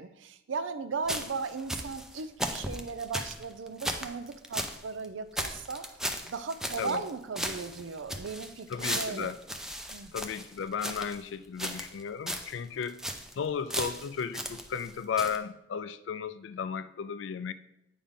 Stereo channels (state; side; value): normal; both; correlation 0.02